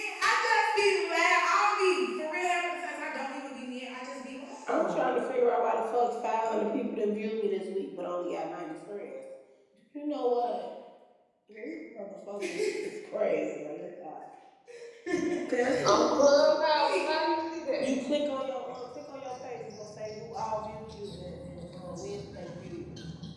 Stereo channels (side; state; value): both; identical; correlation 1.00